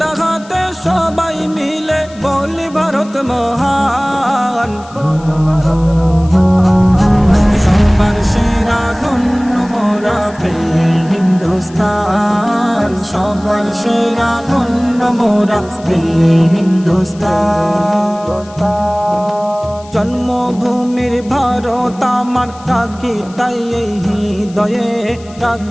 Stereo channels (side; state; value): left; noise; hiss, 24 dB below the sound